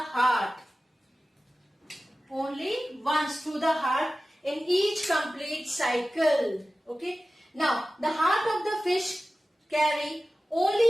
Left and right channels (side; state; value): both; normal; correlation 0.96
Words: Only once through the heart in each complete cycle. Okay. Now, the heart of the fish carry